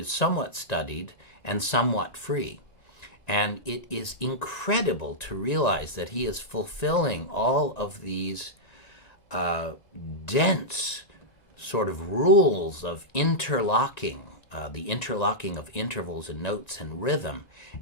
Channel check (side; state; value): right; late; 1.9 ms